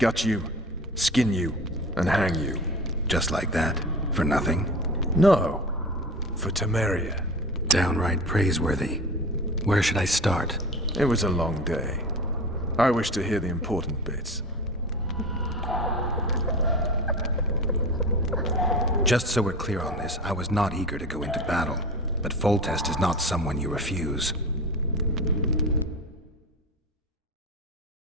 you, skin you, and hang you. Just like that? For nothing? No. For Temeria. Downright praiseworthy. Where should I start? It was a long day. I wish to hear the important bits. Just so we're clear on this, I was not eager to go into battle. But Foltest is not someone you refuse.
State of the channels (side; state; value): both; normal; correlation 0.32